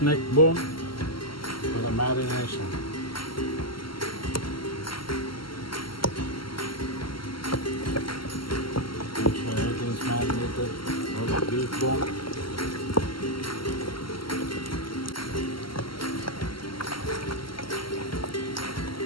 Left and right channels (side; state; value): right; late; 0.74 ms